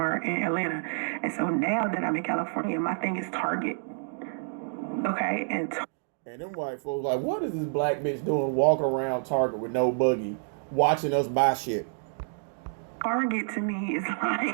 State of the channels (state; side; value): silent; left; digital silence